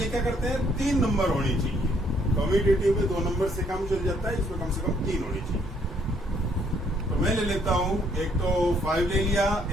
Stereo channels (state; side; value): normal; both; correlation 0.67